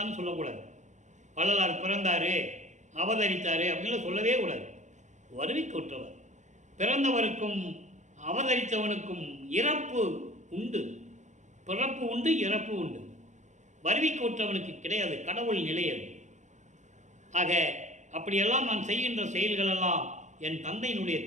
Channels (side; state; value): left; late; 0.34 ms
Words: சொல்லக்கூடாது. வள்ளலார் பிறந்தாரு, அவதரித்தாரு அப்படின்னு சொல்லவே கூடாது. வருவிக்க உற்றவர். பிறந்தவருக்கும் அவதரித்தவனுக்கும் இறப்பு உண்டு, பிறப்பு உண்டு, இறப்பு உண்டு. வருவிக்க உற்றவனுக்கு கிடையாது, கடவுள் நிலையது. ஆக அப்படியெல்லாம் நான் செய்கின்ற செயல்களெல்லாம் என் தந்தையினுடைய